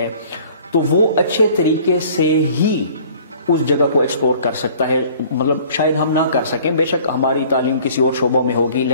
تو وہ اچھے طریقے سے ہی اس جگہ کو ایکسپلور کر سکتا ہے. مطلب شاید ہم نہ کر سکیں، بے شک ہماری تعلیم کسی اور شعبوں میں ہوگی،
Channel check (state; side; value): inverted; both; correlation -0.52